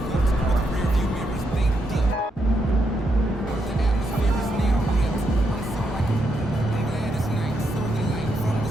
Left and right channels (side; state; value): both; normal; correlation 0.81